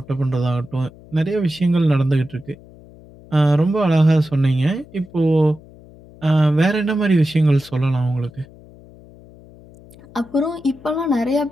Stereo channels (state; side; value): noise; left; hum, 22 dB below the sound